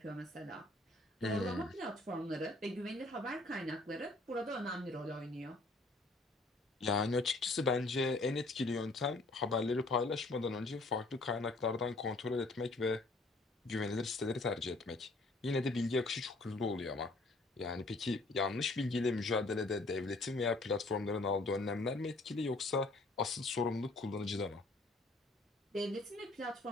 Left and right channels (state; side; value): quieter; right; 3.0 dB